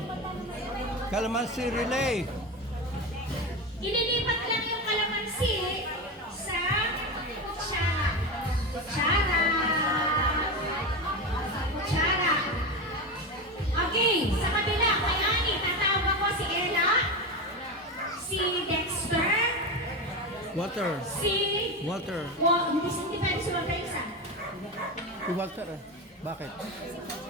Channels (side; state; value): both; normal; correlation 0.19